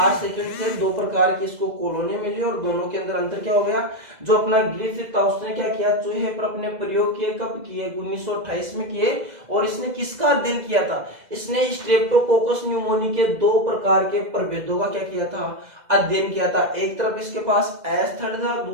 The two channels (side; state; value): left; late; 2.0 ms